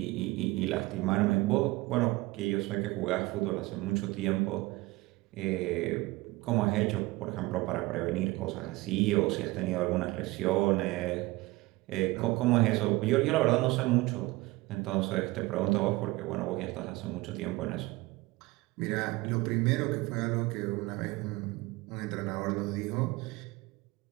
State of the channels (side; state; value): left; quieter; 21.1 dB